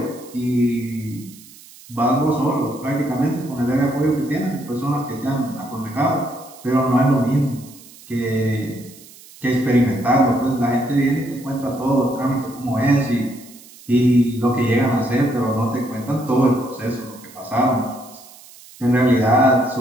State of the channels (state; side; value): noise; right; hiss, 21 dB below the sound